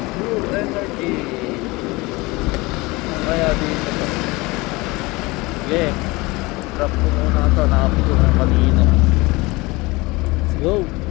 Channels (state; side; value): quieter; right; 23.2 dB